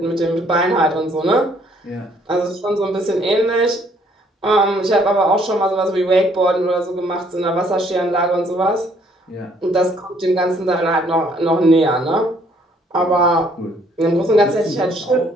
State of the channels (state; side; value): normal; both; correlation 0.64